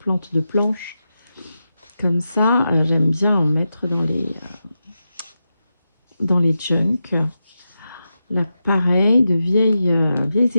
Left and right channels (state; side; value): inverted; both; correlation -0.89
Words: de planche. Comme ça, j'aime bien en mettre dans les junks. Là, pareil, de vieilles